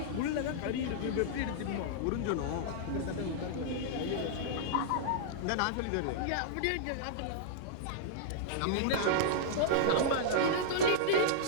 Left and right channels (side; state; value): both; different; correlation -0.02